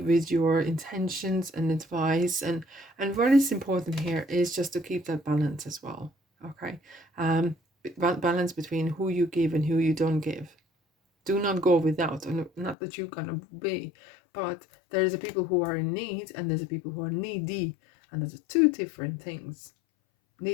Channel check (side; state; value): right; drops out; at 12.8 s